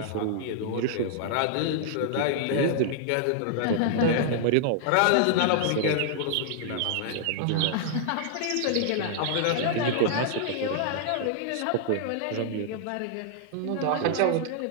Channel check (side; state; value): both; different; correlation -0.01